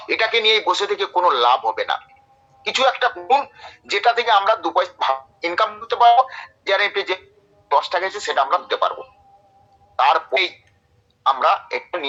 এটাকে নিয়ে বসে থেকে কোনো লাভ হবে না। কিছু একটা করুন যেটা থেকে আমরা 2 পয়সা ইনকাম করতে পারবো, টিজারএফটি যে 10 টাকা আছে সেটা আমরা দিতে পারবো। তারপরেই আমরা একটু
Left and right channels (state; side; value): identical; both; correlation 1.00